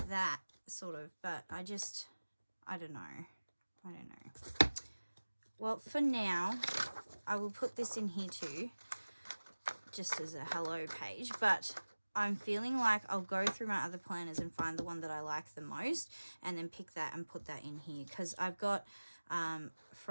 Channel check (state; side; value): inverted; both; correlation -1.00